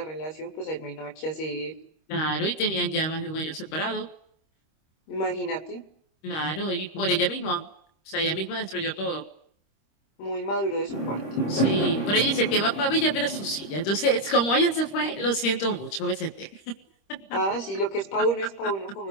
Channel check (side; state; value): right; late; 26 ms